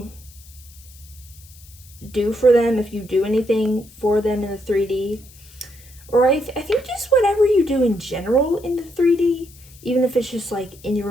do for them, if you do anything for them in the 3D, or I think just whatever you do in general in the 3D, even if it's just like in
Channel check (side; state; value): left; noise; hiss, 23 dB below the sound